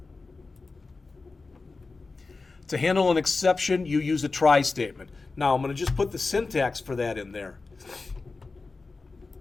To handle an exception, you use a try statement. Now, I'm going to just put the syntax for that in there.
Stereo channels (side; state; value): right; quieter; 3.9 dB